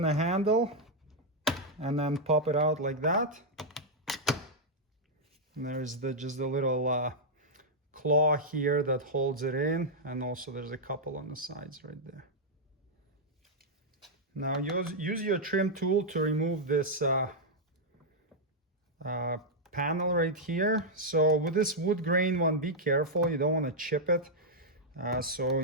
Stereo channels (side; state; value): both; normal; correlation -0.04